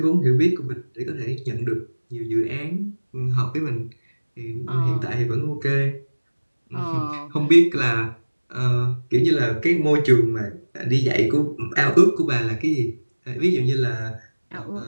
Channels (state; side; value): inverted; both; correlation -1.00